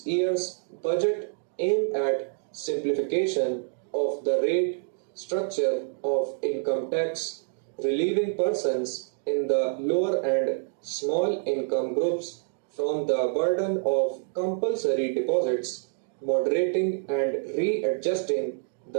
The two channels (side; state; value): left; silent; digital silence